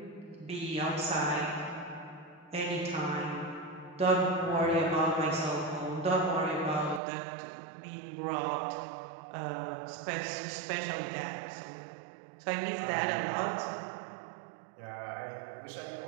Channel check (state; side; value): drops out; left; at 7.0 s